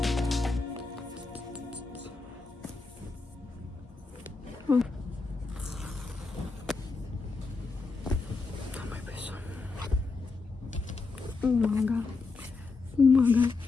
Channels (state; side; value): quieter; right; 4.1 dB